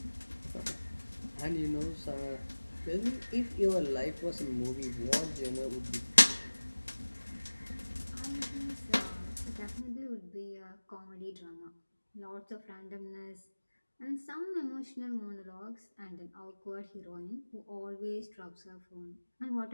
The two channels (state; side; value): inverted; both; correlation -1.00